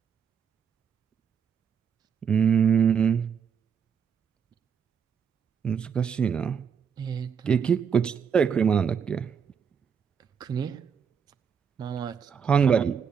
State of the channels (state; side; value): quieter; left; 7.1 dB